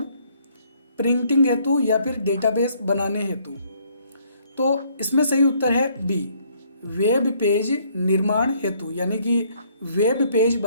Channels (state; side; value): inverted; both; correlation -0.65